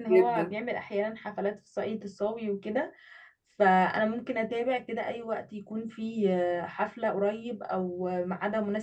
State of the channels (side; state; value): both; identical; correlation 1.00